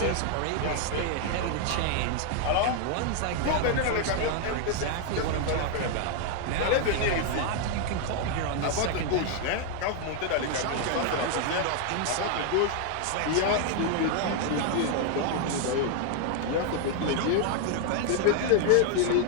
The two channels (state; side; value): different; both; correlation 0.00